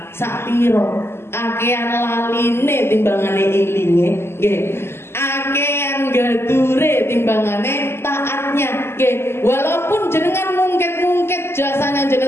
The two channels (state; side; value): late; right; 0.12 ms